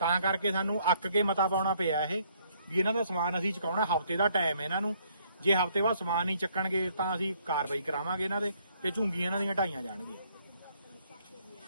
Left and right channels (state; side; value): inverted; both; correlation -0.66